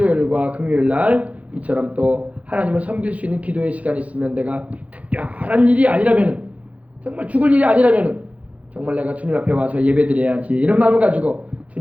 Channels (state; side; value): late; left; 0.067 ms